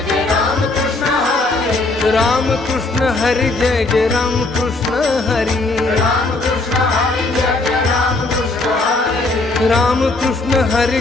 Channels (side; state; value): right; quieter; 3.1 dB